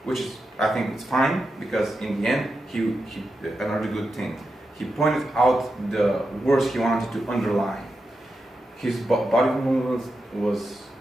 which is, I think, it's fine, because in the end, he another good thing. He pointed out the words he wanted to underline. His body movement was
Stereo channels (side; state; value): both; normal; correlation 0.88